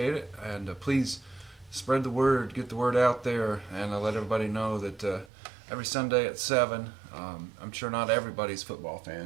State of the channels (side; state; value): left; drops out; at 5.3 s